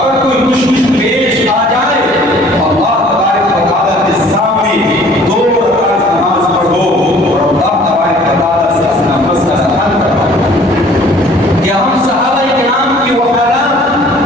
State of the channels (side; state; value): both; normal; correlation 0.54